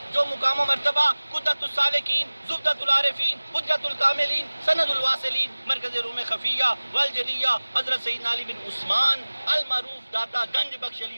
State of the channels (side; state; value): both; inverted; correlation -1.00